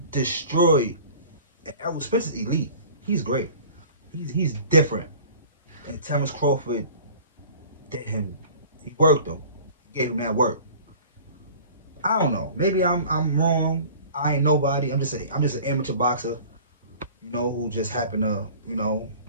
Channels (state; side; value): inverted; both; correlation -0.44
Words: destroyed. And Errol Spence is elite. He's great. He's different. And Terrence Crawford did him. He worked him. He gave him that work. I don't know. Maybe I'm wrong. I ain't nobody. I'm just an amateur boxer, who just happened to, know